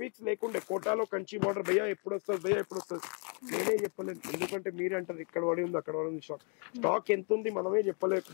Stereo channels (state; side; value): quieter; right; 39.0 dB